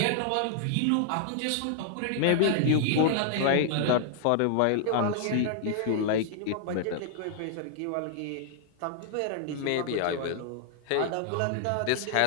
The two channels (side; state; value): both; different; correlation -0.01